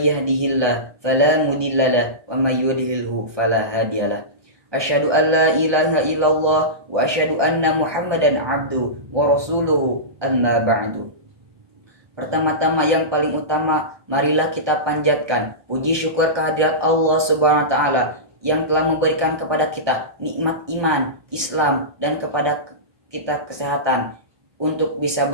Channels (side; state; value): left; late; 1.2 ms